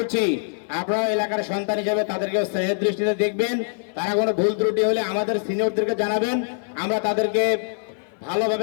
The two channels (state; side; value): silent; right; 57 dB below the other